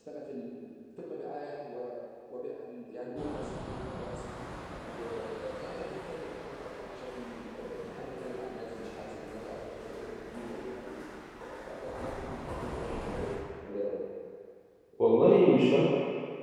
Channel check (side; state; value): both; identical; correlation 1.00